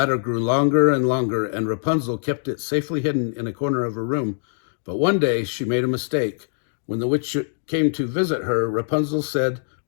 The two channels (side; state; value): right; silent; digital silence